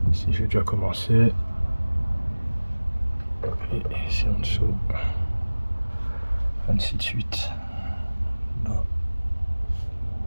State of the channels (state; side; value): inverted; both; correlation -1.00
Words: j'ai déjà commencé, et ici en dessous, ainsi de suite, là,